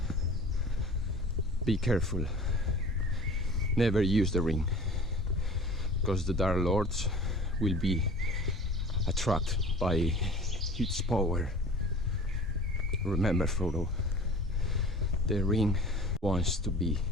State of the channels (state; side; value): normal; both; correlation 0.42